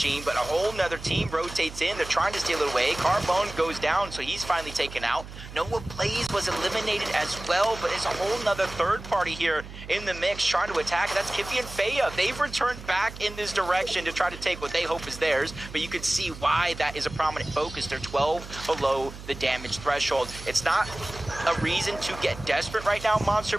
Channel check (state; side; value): noise; right; hum, 13 dB below the sound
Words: but a whole nother team rotates in. They're trying to steal it away. Carbone goes down, so he's finally taken out. Noah Plays was eliminated as well, but it's a whole nother third party here in the mix trying to attack. That's Kiffy and Faya. They've returned back in this direction to try to take what they hope is theirs, but you can see why that is a prominent focus. They're 12 below the damage threshold. It's not a reason to get desperate right now, Monster,